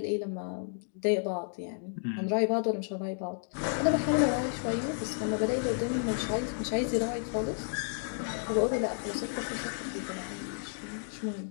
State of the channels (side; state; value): right; silent; digital silence